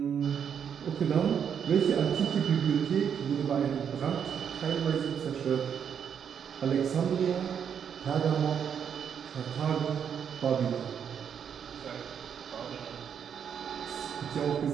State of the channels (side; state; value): left; quieter; 7.8 dB